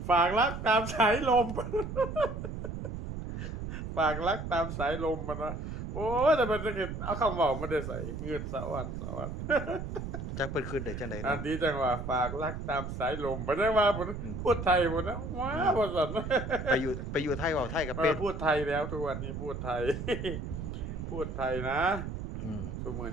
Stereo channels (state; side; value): noise; right; rumble, 6 dB below the sound